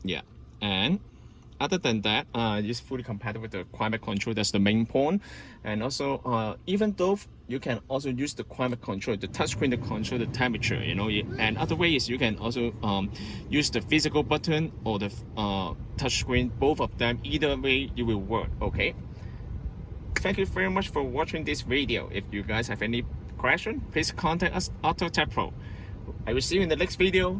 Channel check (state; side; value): identical; both; correlation 1.00